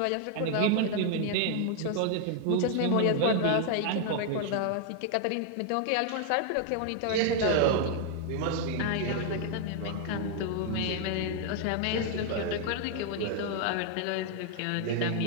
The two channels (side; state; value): both; different; correlation 0.00